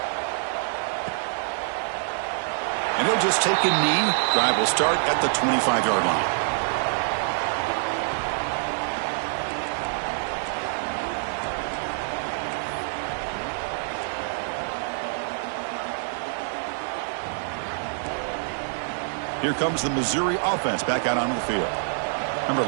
And he'll just take a knee. Drive will start at the 25-yard line. Here comes the Missouri offense back out onto the field. Remember,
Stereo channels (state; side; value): silent; left; digital silence